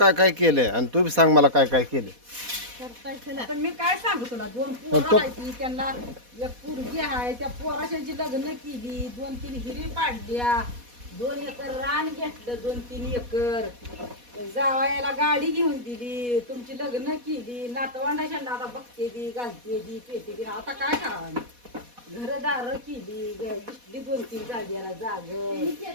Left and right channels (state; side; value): late; left; 4.1 ms